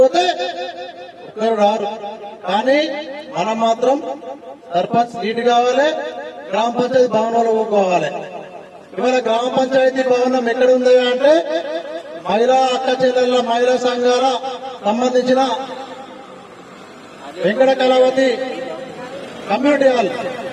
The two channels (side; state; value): both; identical; correlation 1.00